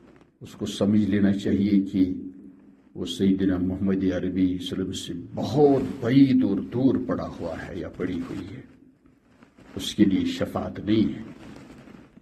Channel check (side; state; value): both; identical; correlation 1.00